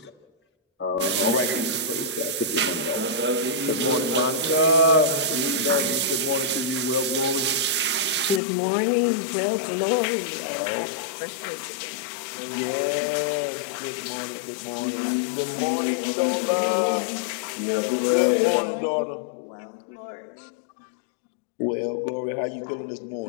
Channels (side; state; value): right; drops out; at 8.4 s